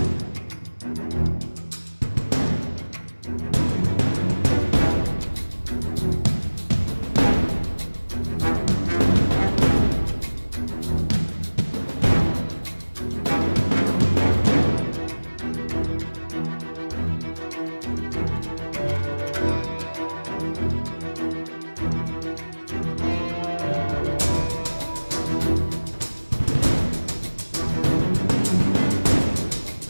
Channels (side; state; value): both; inverted; correlation -1.00